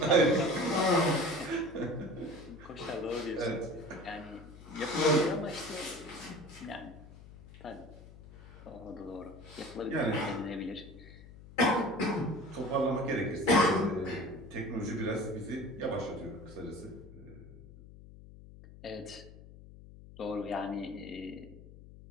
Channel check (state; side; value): noise; left; hum, 18 dB below the sound